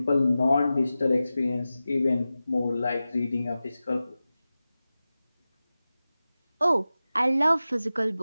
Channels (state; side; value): inverted; both; correlation -0.95